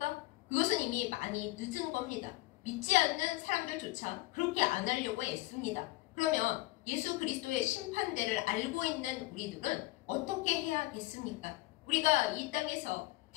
그것은 이미 많이 늦은 겁니다. 믿지 않는 사람들조차 그렇게 안 하려고 애씁니다. 그러면 예수 그리스도의 심판대를 알고 있는 우리들은 어떻게 해야겠습니까? 우리가 이 땅에서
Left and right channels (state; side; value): quieter; right; 19.7 dB